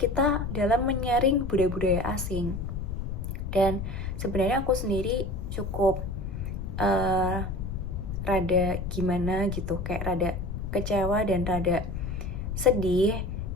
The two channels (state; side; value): noise; left; rumble, 4 dB below the sound